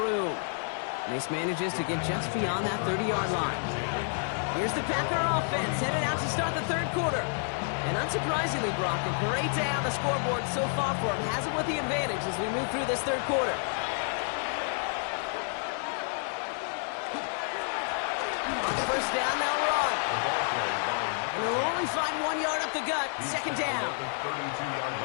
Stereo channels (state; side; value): silent; right; 57 dB below the other